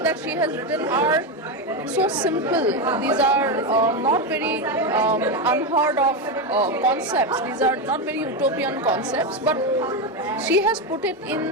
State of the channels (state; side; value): normal; both; correlation 0.11